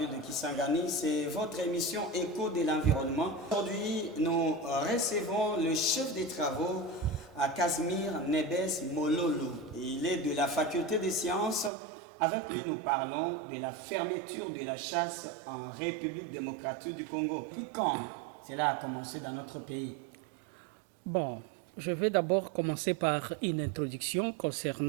de Kisangani. C'est votre émission Écho de l'environnement. Aujourd'hui, nous recevons le chef des travaux à Casimir Nebes Mololo. Il est de la faculté des sciences. Avec lui, nous parlons de la fermeture de la chasse en République démocratique du Congo. Puis quand cela a commencé dans notre pays? Bon, je vais d'abord commencer par une introduction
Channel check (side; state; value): left; drops out; at 11.7 s